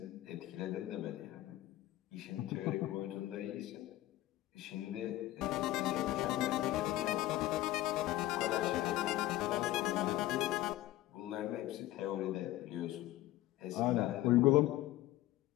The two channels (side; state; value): right; quieter; 15.6 dB